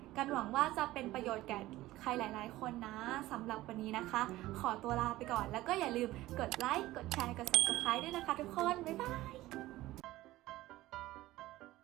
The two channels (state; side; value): quieter; left; 16.8 dB